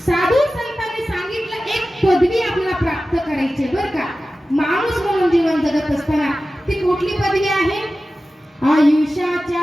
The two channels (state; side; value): normal; both; correlation 0.95